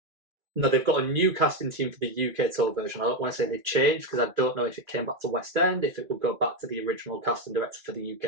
No, they've got a new casting team for the UK tour version. I don't want to say they've changed because I don't know if it came back to West End, if it would go back to the original casting director for the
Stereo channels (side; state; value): left; late; 2.6 ms